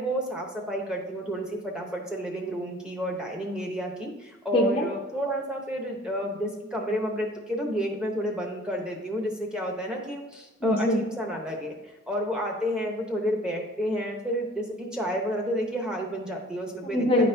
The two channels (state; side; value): normal; both; correlation 0.50